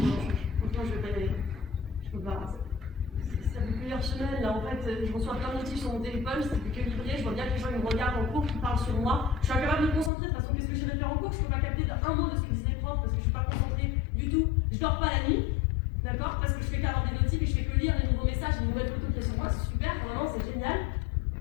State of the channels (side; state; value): right; drops out; at 10.1 s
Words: franchement je vais pas y aller. Je peux pas. Ça fait plusieurs semaines là en fait, je reçois plein de notifs sur mon téléphone, c'est plus que livré, je vois bien que les gens ils me regardent en cours, qui parlent sur moi. Je suis incapable de me concentrer, de toute façon qu'est-ce que j'irai faire en cours? Je peux pas capter un mot de ce que disent les profs parce que je suis pas concentrée du tout. Je dors pas la nuit, d'accord? Parce que je fais qu'avoir des notifs et je fais que lire les nouveaux messages, les nouvelles photos qu'il y a sur moi, c'est super, vraiment c'est génial.